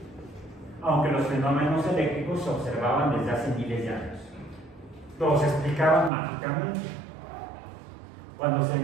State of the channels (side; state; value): left; drops out; at 6.1 s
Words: aunque los fenómenos eléctricos se observaban desde hace miles de años. Los explicaban mágicamente. Cuando se